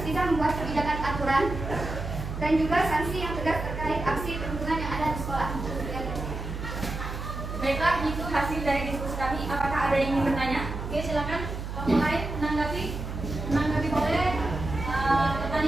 bisa membuat kebijakan aturan dan juga sanksi yang tegas terkait aksi perundungan yang ada di sekolah. Baiklah, itu hasil dari diskusi kami. Apakah ada yang ingin bertanya? Oke, silakan. Kelompok lain menanggapi boleh.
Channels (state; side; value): noise; right; hum, 6 dB below the sound